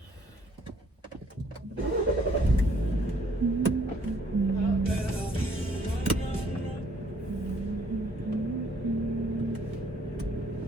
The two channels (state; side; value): normal; both; correlation 0.63